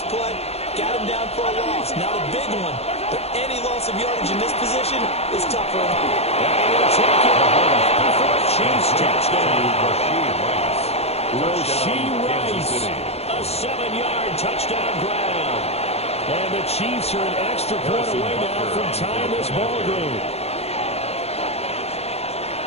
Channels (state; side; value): late; right; 0.30 ms